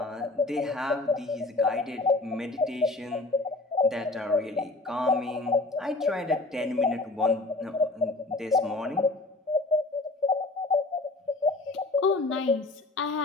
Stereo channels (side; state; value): right; quieter; 3.1 dB